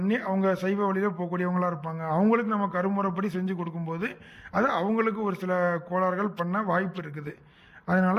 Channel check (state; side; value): identical; both; correlation 1.00